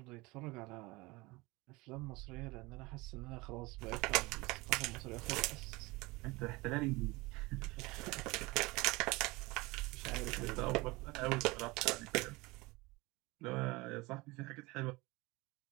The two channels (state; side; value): quieter; left; 23.1 dB